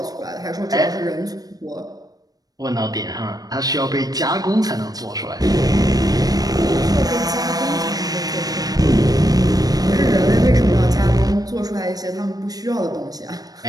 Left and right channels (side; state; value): left; late; 0.18 ms